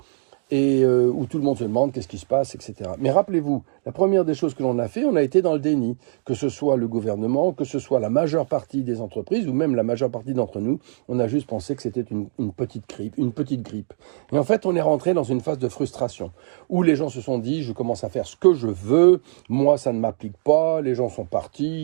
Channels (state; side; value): silent; left; digital silence